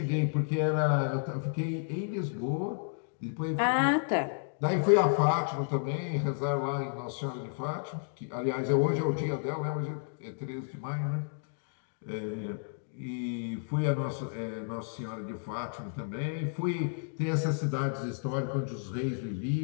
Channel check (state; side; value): silent; right; digital silence